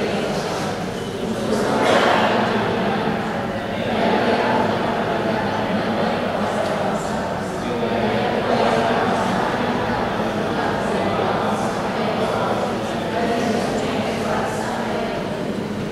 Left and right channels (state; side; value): identical; both; correlation 1.00